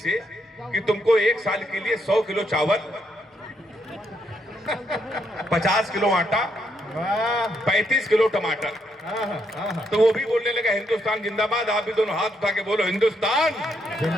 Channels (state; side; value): normal; both; correlation 0.76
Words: कि तुमको 1 साल के लिए 100 किलो चावल, 50 किलो आटा, 35 किलो टमाटर। तो वो भी बोलने लगा हिंदुस्तान जिंदाबाद। आप भी दोनों हाथ उठा के बोलो हिंदुस्तान